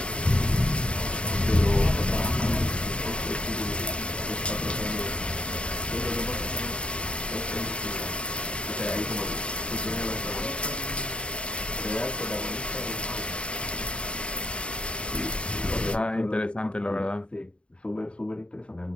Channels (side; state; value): right; late; 0.057 ms